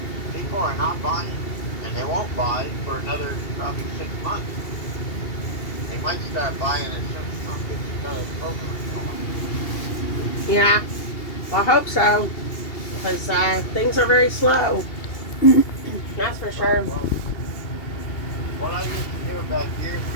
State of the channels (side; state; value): right; late; 2.8 ms